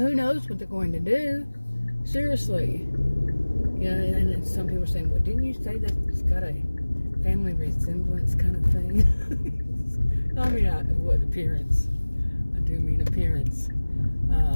knows what they're going to do? Seriously. You know, and some people are saying, well, didn't you say that it's got a family resemblance kind of thing? I mean, what appearance? I do mean appearance.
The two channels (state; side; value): inverted; both; correlation -1.00